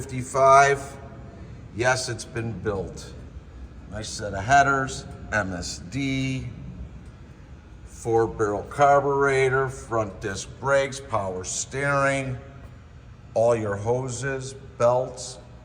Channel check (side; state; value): both; identical; correlation 1.00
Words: Yes, it's been built. Nice set of headers, MSD, 4-barrel carburetor, front disc brakes, power steering. All your hoses, belts